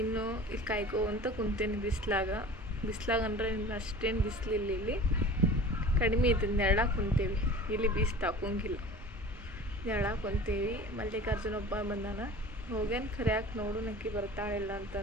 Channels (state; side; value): normal; both; correlation 0.40